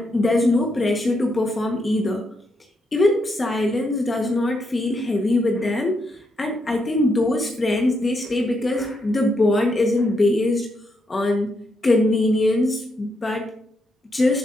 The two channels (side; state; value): both; normal; correlation 0.80